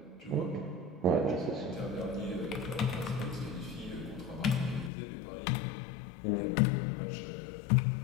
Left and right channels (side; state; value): right; drops out; at 4.9 s